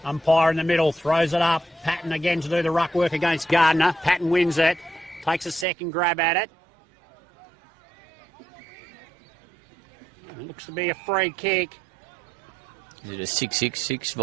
Umpire in the middle throws it up. Patton again to do the ruck work against Gardner. Patton wins it. Takes a second grab at it. It looks to be a free kick. Is it a 666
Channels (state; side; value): drops out; left; at 5.7 s